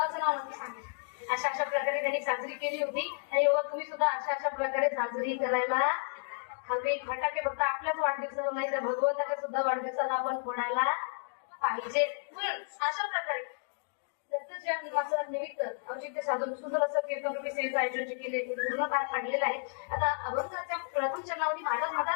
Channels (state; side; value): silent; right; digital silence